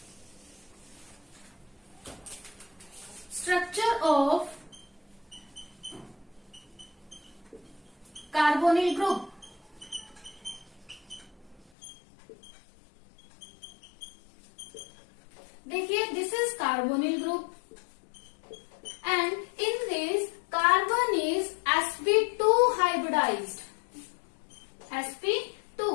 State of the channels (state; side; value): drops out; right; at 11.7 s